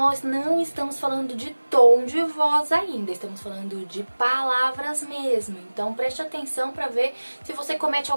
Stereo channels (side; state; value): both; inverted; correlation -1.00